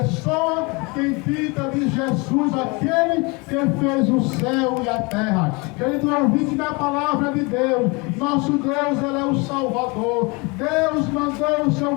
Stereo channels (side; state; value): right; quieter; 28.1 dB